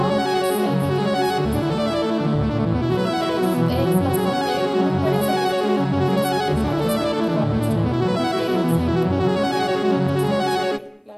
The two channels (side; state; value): both; identical; correlation 1.00